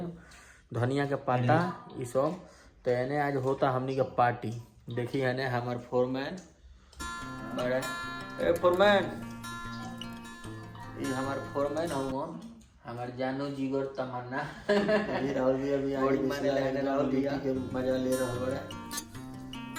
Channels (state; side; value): identical; both; correlation 1.00